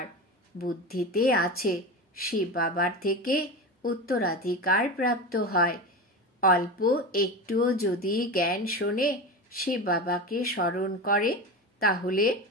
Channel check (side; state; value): both; normal; correlation 0.25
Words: বুদ্ধিতে আছে, শিব বাবার থেকে উত্তরাধিকার প্রাপ্ত হয়। অল্প একটুও যদি জ্ঞান শোনে, শিব বাবাকে স্মরণ করে, তাহলে